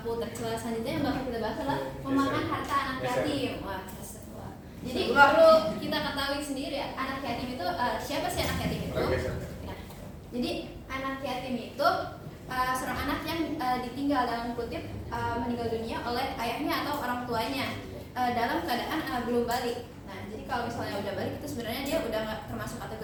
tercela selanjutnya yang bakal kita bahas adalah memakan harta anak yatim. Wah, jadi perlu kita ketahui sendiri ya, anak yatim itu siapa sih anak yatim itu? Nah, jadi anak yatim itu seorang anak yang ditinggal dalam kutip meninggal dunia oleh ayahnya atau orang tuanya dalam keadaan belum balik. Nah, jadi kalau misalnya udah balik itu sebenarnya dia udah nggak termasuk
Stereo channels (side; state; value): both; identical; correlation 1.00